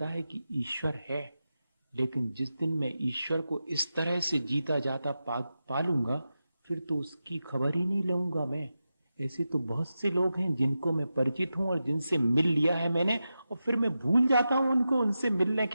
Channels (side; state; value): both; inverted; correlation -0.91